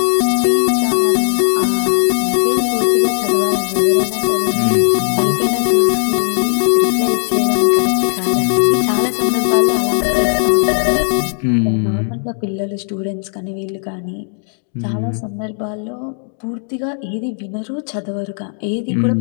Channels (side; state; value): right; silent; 62 dB below the other